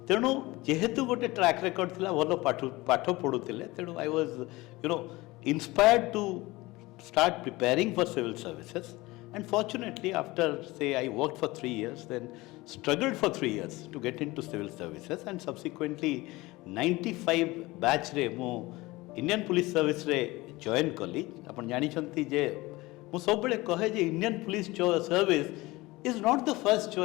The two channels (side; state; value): right; quieter; 20.8 dB